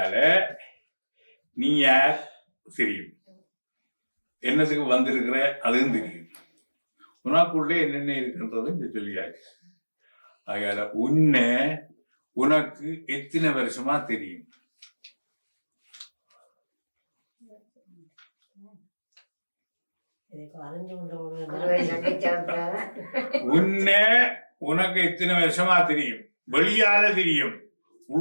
நீ யார் தெரியும், என்னத்துக்கு வந்திருக்கிற அதுவும் தெரியும், உனக்குள்ளே என்னென்ன இருக்குன்றது சொல்லியாச்சு. அதனால உனக்கு எத்தனை வருஷமா தெரியும்? உனக்கு எத்தனை வருஷமா தெரியும்? வெளியால தெரியும்,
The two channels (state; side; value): inverted; both; correlation -1.00